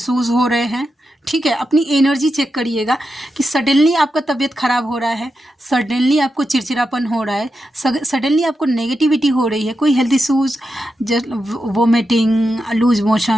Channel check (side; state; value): both; normal; correlation 0.88